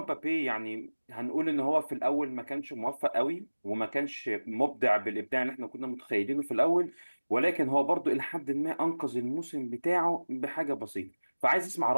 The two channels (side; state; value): both; inverted; correlation -1.00